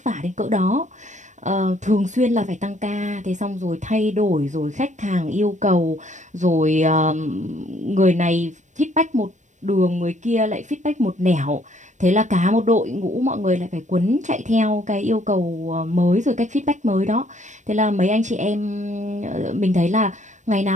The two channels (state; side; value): late; left; 0.35 ms